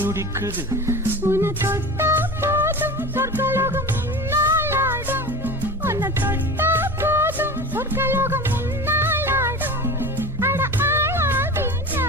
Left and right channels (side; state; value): right; noise; hum, 18 dB below the sound